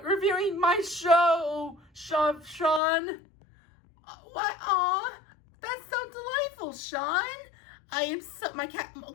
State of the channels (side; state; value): right; drops out; at 2.8 s